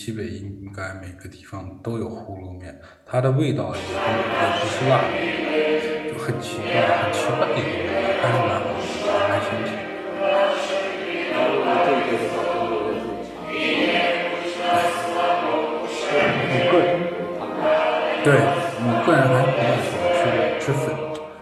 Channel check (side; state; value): both; identical; correlation 1.00